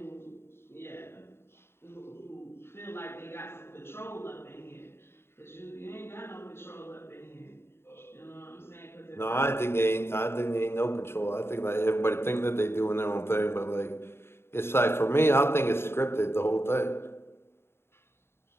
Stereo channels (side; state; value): right; late; 0.12 ms